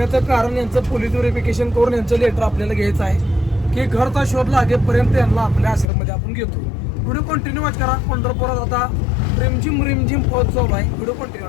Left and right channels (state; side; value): drops out; right; at 5.9 s